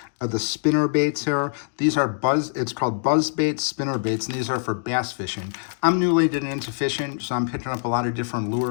of the spinner baits here. These are it's called Buzzbait Spinnerbaits, and these are for bass fishing. I'm newly getting into fishing, so I'm picking up a lot of different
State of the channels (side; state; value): right; silent; digital silence